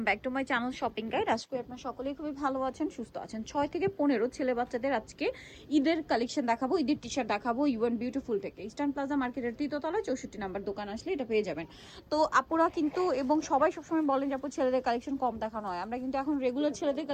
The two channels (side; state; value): both; identical; correlation 1.00